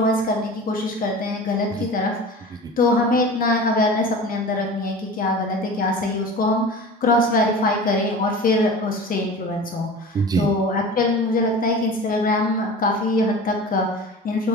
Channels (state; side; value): normal; both; correlation 0.36